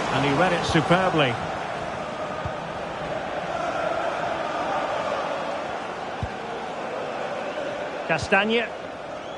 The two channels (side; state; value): both; identical; correlation 1.00